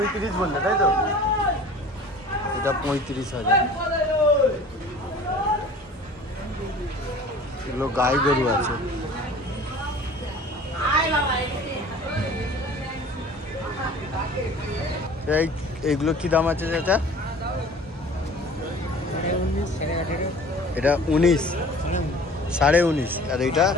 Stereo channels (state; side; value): normal; both; correlation 0.45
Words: বললে, তাই তো? এটা 35,000। এগুলো গাই গরু আছে। এইগুলো কি দাম আছে চাচা? এটা 19, 19.5, আর এইটা